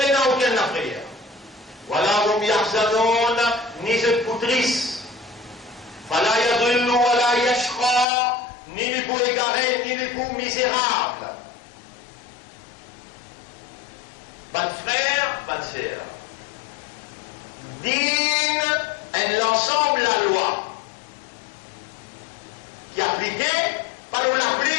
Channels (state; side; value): drops out; right; at 8.1 s